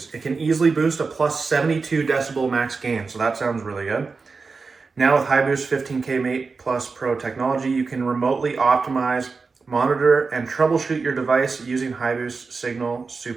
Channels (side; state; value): left; quieter; 4.5 dB